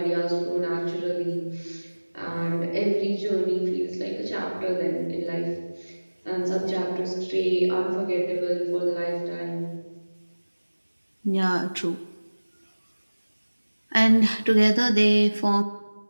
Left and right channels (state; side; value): inverted; both; correlation -1.00